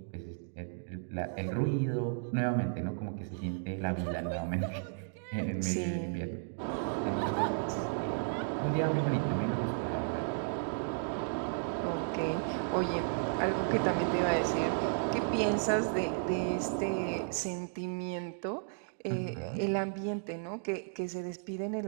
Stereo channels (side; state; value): left; silent; digital silence